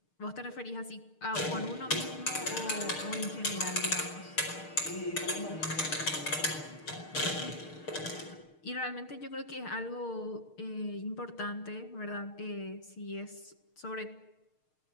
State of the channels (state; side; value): late; right; 6.5 ms